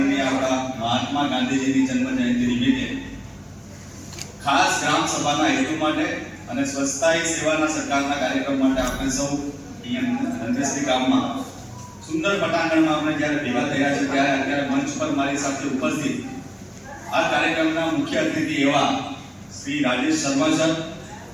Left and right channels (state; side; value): identical; both; correlation 1.00